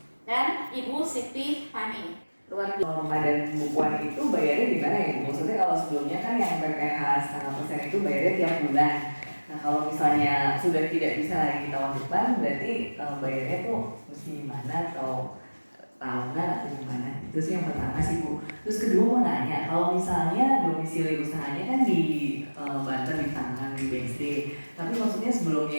dan Ibu Siti Fani. Luar biasa. Norma dan pembukuan itu bayarnya gimana ya? Maksudnya kalau sebelumnya kan yang PPh 0,5% itu bayarnya tiap bulan. Nah kalau misalnya sudah tidak bisa lagi kita wajibkan, berarti bayarnya tuh mesti gimana atau tahunan atau gimana? Itu sih yang pertama sih Bu. Terus kedua mau nanya, kalau misalnya domisili usahanya kan di Banten, di Tangerang, di BSD, tapi maksudnya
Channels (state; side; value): inverted; both; correlation -1.00